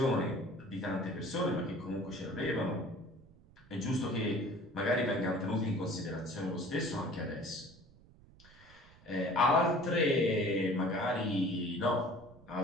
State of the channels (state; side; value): noise; right; rumble, 25 dB below the sound